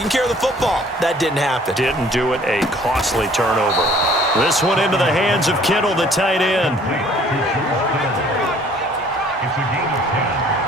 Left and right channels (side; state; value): both; normal; correlation 0.56